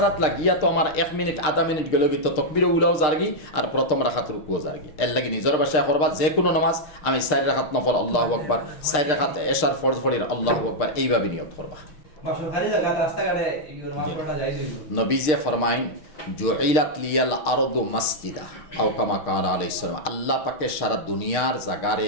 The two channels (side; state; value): right; late; 6.6 ms